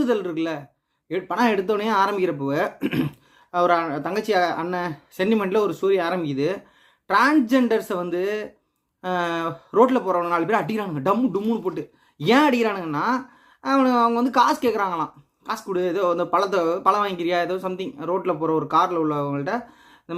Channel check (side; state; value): both; identical; correlation 1.00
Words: இருக்குல்ல. படம் எடுத்தோடனே ஆரம்பிக்கிறப்போ ஒரு தங்கச்சி அண்ணன் சென்டிமெண்ட்டில் ஒரு ஸ்டோரி ஆரம்பிக்குது. டிரான்ஸ்ஜெண்டர்ஸை வந்து ரோட்டில் போகிறவங்க 4 பேர் அடிக்கிறானுங்க, டம்முன்னு போட்டு. ஏன் அடிக்கிறானுங்கன்னா, அவங்க வந்து காசு கேட்குறாங்களாம். காசு கொடு, ஏதோ அந்த பழம் வாங்கிக்கிறியா, ஏதோ சம்திங். ரோட்டில் போகிற ஒரு காரில் உள்ளவங்கள்ட்ட இந்த